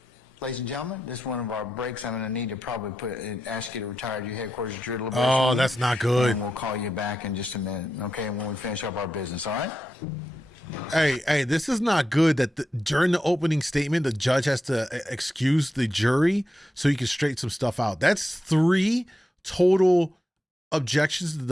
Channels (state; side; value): normal; both; correlation 0.87